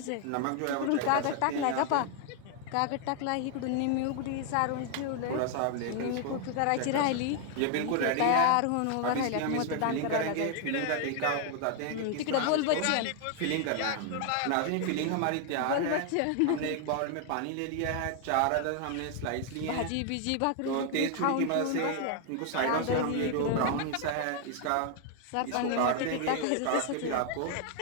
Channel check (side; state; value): both; different; correlation 0.00